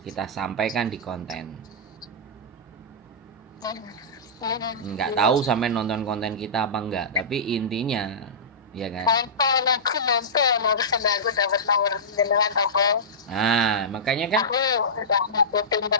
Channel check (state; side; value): normal; both; correlation -0.16